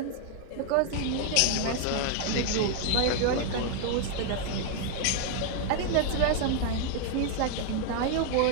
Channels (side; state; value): both; different; correlation 0.00